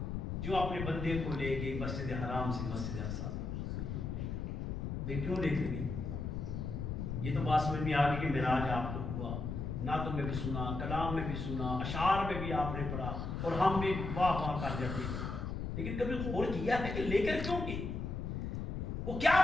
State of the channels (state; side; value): noise; left; rumble, 3 dB below the sound